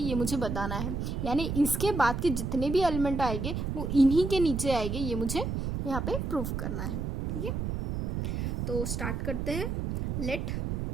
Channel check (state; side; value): noise; right; rumble, 2 dB below the sound